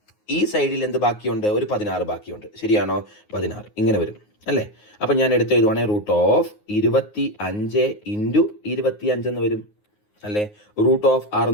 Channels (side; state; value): right; late; 9.5 ms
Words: ഈ സൈഡിൽ എന്ത് ബാക്കിയുണ്ട്? ഒരു 16 ബാക്കിയുണ്ട്, ശരിയാണോ? 16 ഇങ്ങനെ വരും അല്ലേ? അപ്പം ഞാൻ എടുത്ത് എഴുതുവാണെങ്കിൽ റൂട്ട് ഓഫ് 25 ഇൻറ്റു 25 എന്ന് വരും അല്ലേ? റൂട്ട് ഓഫ്